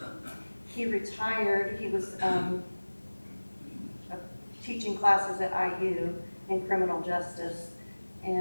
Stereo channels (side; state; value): both; inverted; correlation -1.00